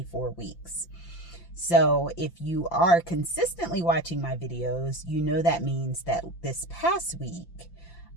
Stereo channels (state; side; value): late; right; 5.8 ms